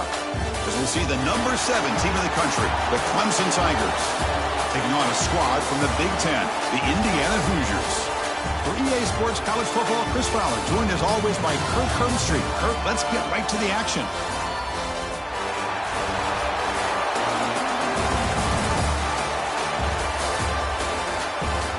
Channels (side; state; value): both; identical; correlation 1.00